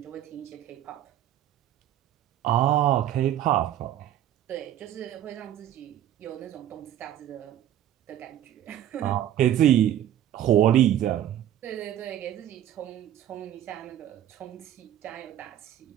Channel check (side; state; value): left; quieter; 11.6 dB